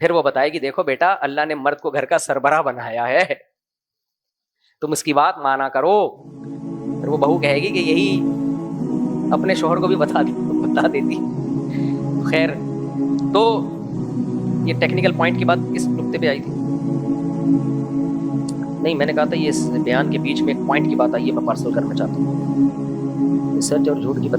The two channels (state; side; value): identical; both; correlation 1.00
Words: پھر وہ بتائے گی دیکھو بیٹا اللہ نے مرد کو گھر کا سربراہ بنایا ہے، تم اس کی بات مانا کرو۔ پھر وہ بہو کہے گی کہ یہی اپنے شوہر کو بھی بتا دیتی۔ خیر، تو یہ ٹیکنیکل پوائنٹ کی بات کس نقطے پہ آئی تھی؟ نہیں، میں نے کہا تھا یہ اس بیان کے بیچ میں ایک پوائنٹ کی بات آئی ہے، میں پارسل کرنا چاہتا ہوں، سچ اور جھوٹ کی